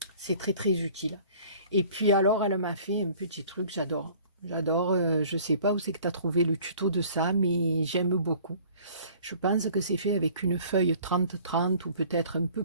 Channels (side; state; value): both; inverted; correlation -0.51